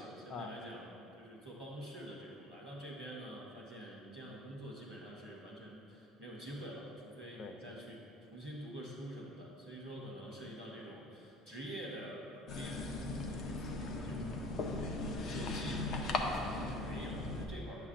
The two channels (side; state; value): both; normal; correlation 0.45